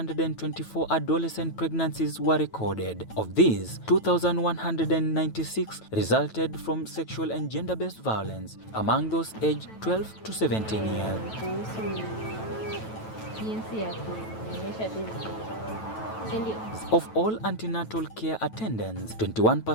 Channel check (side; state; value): right; late; 9.1 ms